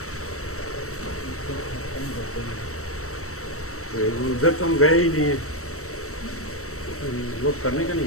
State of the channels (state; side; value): late; right; 0.64 ms